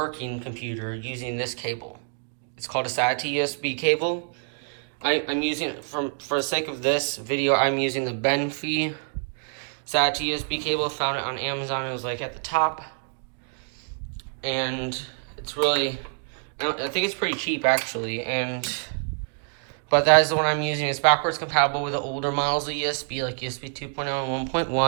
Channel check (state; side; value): silent; left; 57 dB below the other